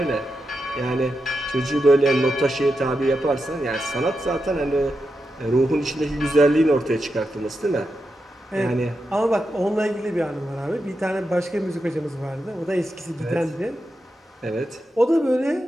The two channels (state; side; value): normal; both; correlation 0.87